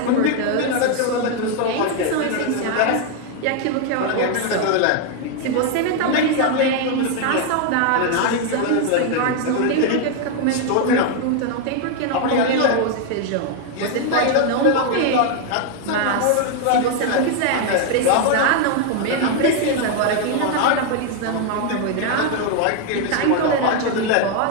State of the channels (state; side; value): different; both; correlation 0.00